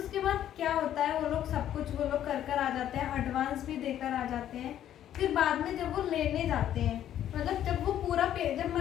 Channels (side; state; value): right; quieter; 11.1 dB